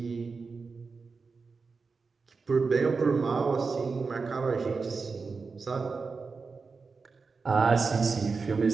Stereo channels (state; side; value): quieter; left; 4.6 dB